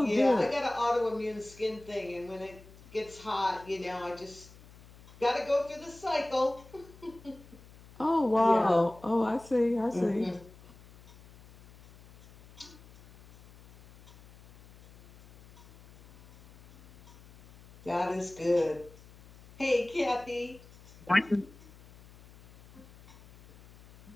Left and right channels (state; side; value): noise; left; hum, 22 dB below the sound